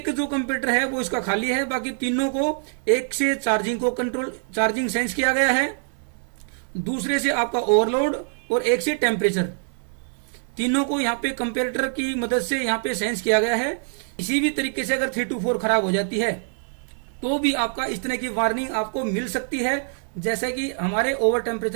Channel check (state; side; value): silent; left; 62 dB below the other